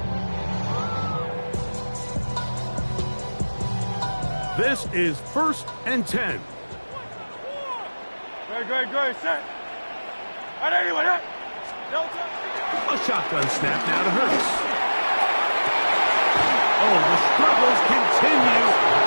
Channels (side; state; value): both; inverted; correlation -1.00